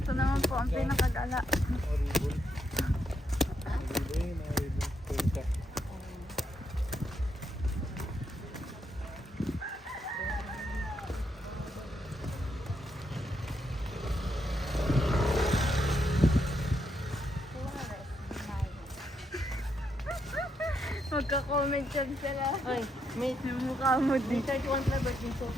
Ito naman po ang pinakagala. Horrible. Horrible. Punta. Magka-comment yan sila. Ay, may Yung mukha mo din. 31 flavors yung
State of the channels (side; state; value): both; normal; correlation 0.79